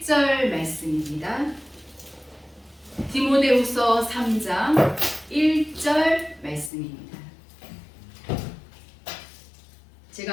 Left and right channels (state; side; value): drops out; right; at 6.7 s